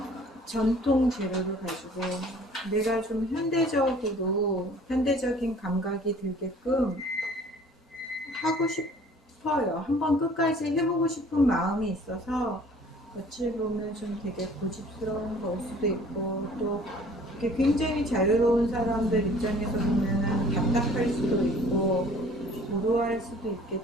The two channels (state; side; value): normal; both; correlation 0.52